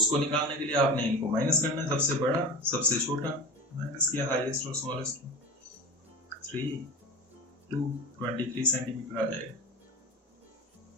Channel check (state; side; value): normal; both; correlation 0.31